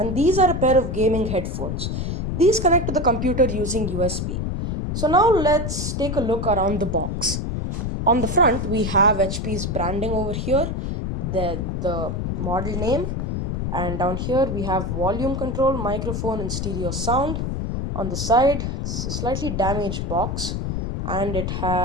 these are a pair of gaming headphones. These connect to the computer using USB. So now let's take a look around the box. On the front we have HP's branding over here, the model name, and down here we have volume control, microphone and stereo sound. On the side it's a slightly damaged box and it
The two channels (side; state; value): left; noise; rumble, 2 dB below the sound